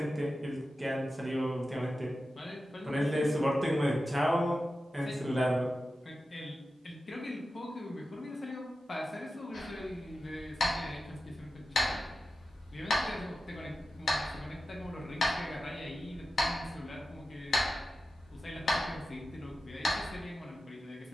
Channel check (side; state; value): both; normal; correlation 0.93